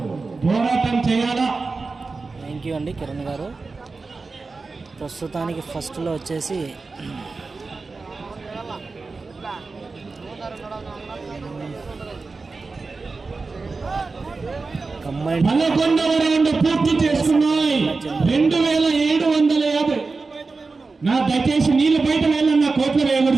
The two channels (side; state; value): left; quieter; 4.0 dB